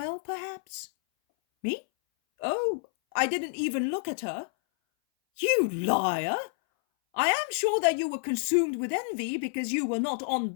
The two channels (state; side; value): silent; right; 59 dB below the other